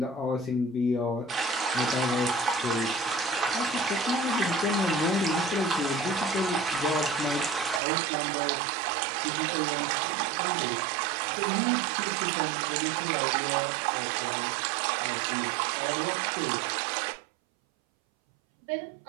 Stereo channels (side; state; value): left; drops out; at 7.8 s